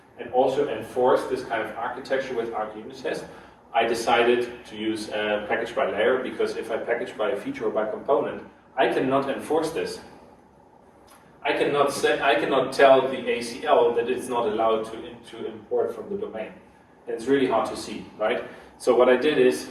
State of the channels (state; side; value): identical; both; correlation 1.00